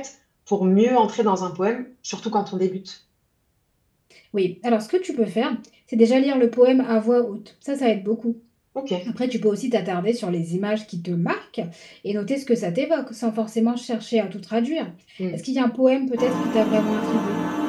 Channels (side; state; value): both; identical; correlation 1.00